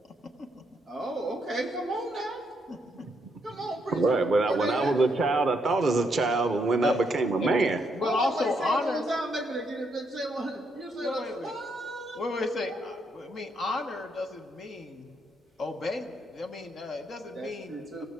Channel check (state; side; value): normal; both; correlation 0.76